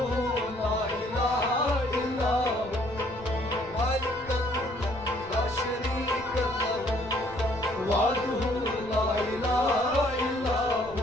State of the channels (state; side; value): noise; left; rumble, 18 dB below the sound